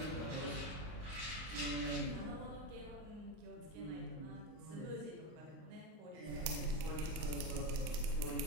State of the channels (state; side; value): late; left; 39 ms